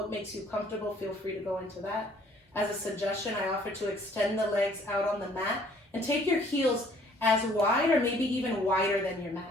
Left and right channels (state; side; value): normal; both; correlation 0.59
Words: makes you comfortable, feel free to go into that. As a suggestion, I offer to extend the legs out on the mat and take your heels as wide or maybe even wider than your